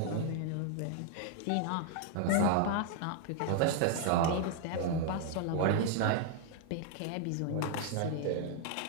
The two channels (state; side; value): different; both; correlation 0.00